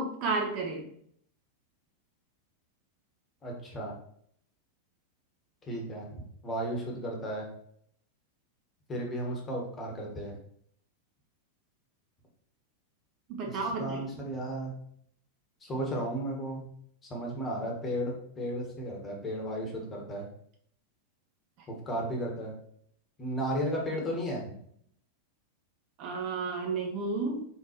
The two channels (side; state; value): both; normal; correlation 0.08